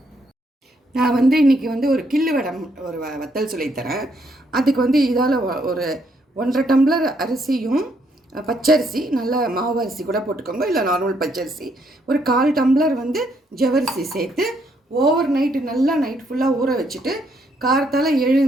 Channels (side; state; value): both; normal; correlation 0.73